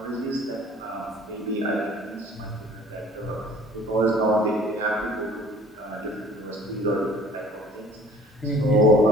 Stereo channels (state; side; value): normal; both; correlation 0.50